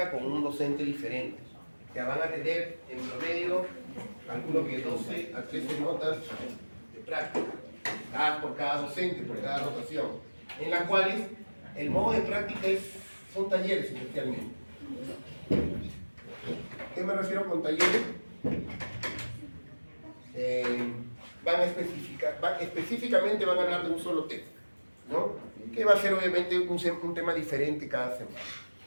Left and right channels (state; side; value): inverted; both; correlation -1.00